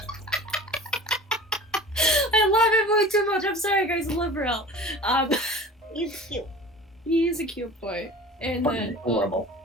I love him way too much. I'm sorry, guys. I love Rill. He's cute. He's a cute boy. And then adorable.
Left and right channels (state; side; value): normal; both; correlation 0.40